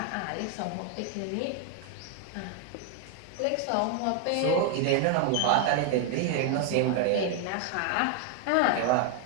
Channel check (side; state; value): both; different; correlation 0.01